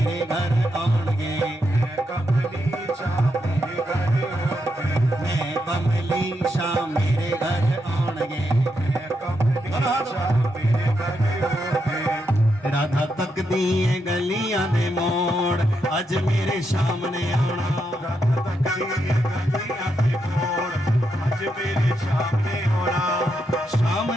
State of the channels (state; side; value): normal; both; correlation 0.82